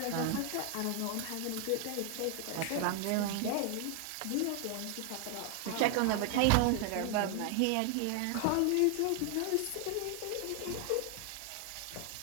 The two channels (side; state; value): both; different; correlation 0.00